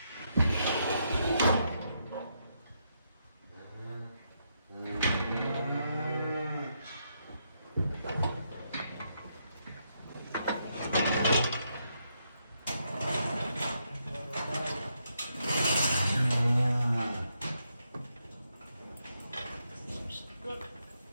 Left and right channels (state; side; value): inverted; both; correlation -0.79